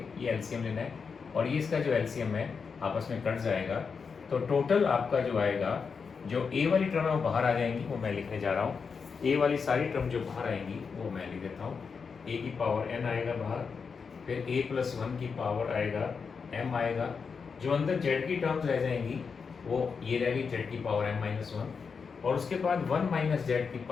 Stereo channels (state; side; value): quieter; right; 5.6 dB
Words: ये एलसीएम लेना है, और ये इसका जो एलसीएम है आपस में कट जाएगा, तो टोटल आपका जो आएगा, जो a वाली टर्म है वो बाहर आ जाएंगी, वो मैं लिखने जा रहा हूँ। ए वाली सारी टर्म जो बाहर आएंगी वो मैं लिख देता हूँ। ए की पावर एन आएगा बाहर, फिर ए प्लस वन की पावर आएगा एम आएगा, जो अंदर जेड की टर्म्स रह जाएंगी वो ये रहेगी जेड की पावर एम माइनस वन, और उसके बाद वन माइनस जेड की